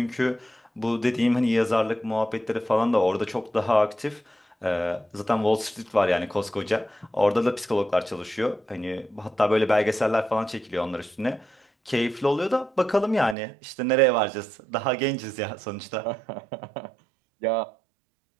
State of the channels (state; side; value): drops out; left; at 13.4 s